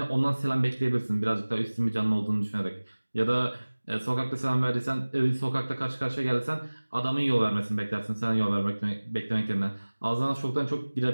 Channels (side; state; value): both; inverted; correlation -1.00